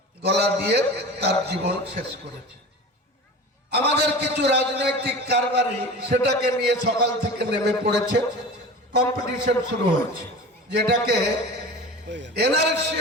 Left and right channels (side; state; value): both; normal; correlation 0.34